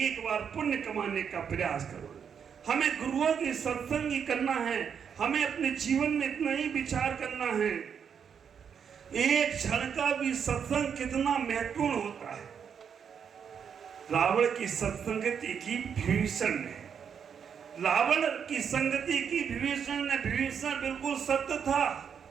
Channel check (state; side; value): quieter; left; 7.3 dB